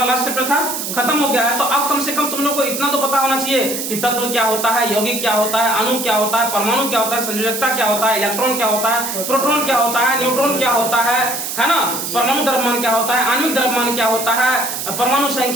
लास्ट चैप्टर था, खत्म हो गया है, तो अब कम से कम तुम लोग को इतना तो पता होना चाहिए कि तत्व क्या होता है, यौगिक क्या होता है, अणु क्या होता है, परमाणु क्या होता है, संयोजकता क्या होता है, इलेक्ट्रॉन क्या होता है, प्रोटॉन क्या होता है, न्यूट्रॉन क्या होता है ना, परमाणु द्रव्यमान क्या होता है, आणविक द्रव्यमान क्या होता है, परमाणु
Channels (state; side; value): noise; right; hiss, 4 dB below the sound